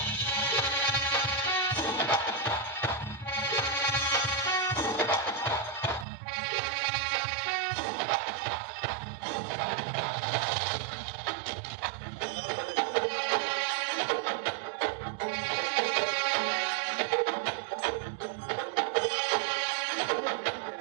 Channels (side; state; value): left; drops out; at 6.1 s